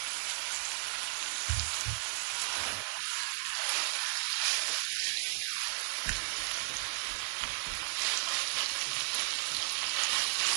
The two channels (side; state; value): left; silent; digital silence